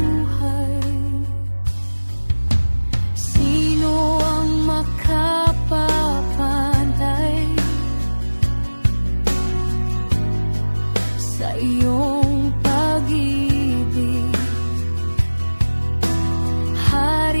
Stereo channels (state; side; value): inverted; both; correlation -1.00